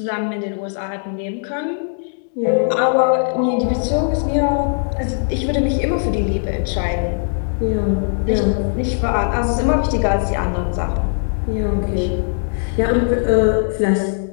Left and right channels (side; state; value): right; silent; digital silence